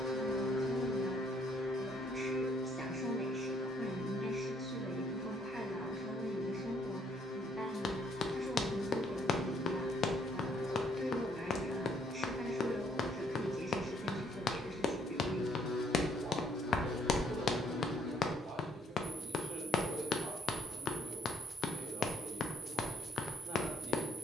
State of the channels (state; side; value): normal; both; correlation 0.67